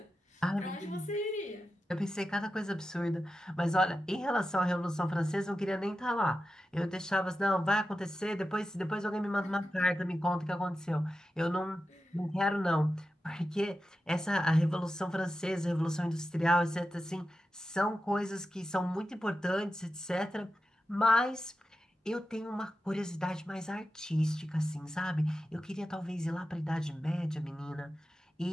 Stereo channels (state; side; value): normal; both; correlation 0.91